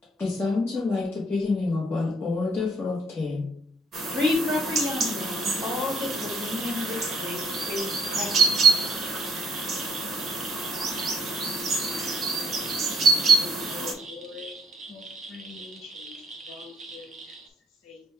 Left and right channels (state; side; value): normal; both; correlation 0.67